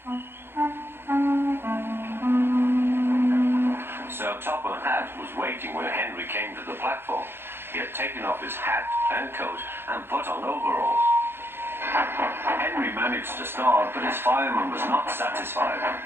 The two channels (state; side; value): late; left; 0.11 ms